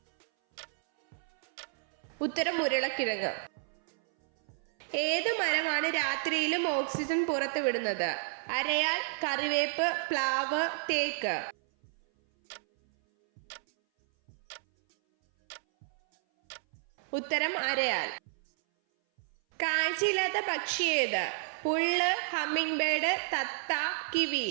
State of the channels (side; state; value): left; silent; 57 dB below the other